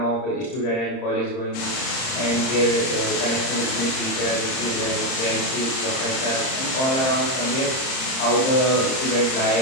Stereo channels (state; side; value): late; right; 30 ms